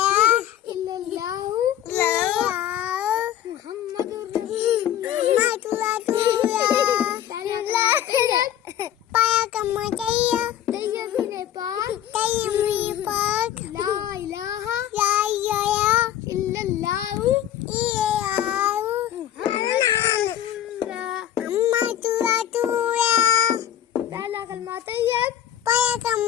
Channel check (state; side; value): quieter; right; 11.2 dB